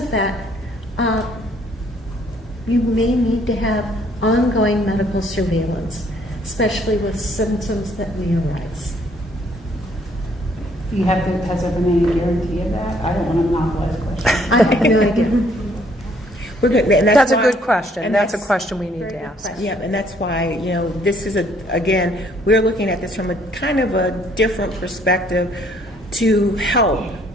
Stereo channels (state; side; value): normal; both; correlation 0.64